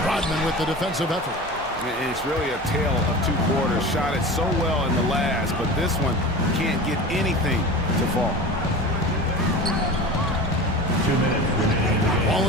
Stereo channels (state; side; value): normal; both; correlation 0.33